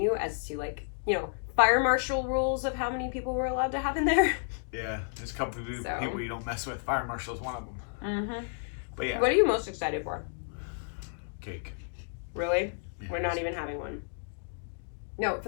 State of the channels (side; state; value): right; silent; digital silence